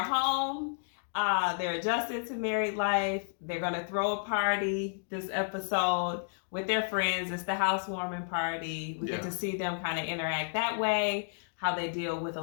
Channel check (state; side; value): silent; right; digital silence